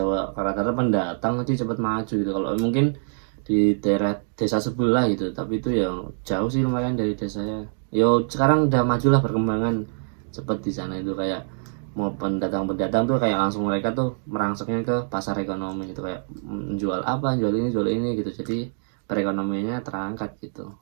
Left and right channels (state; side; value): silent; left; digital silence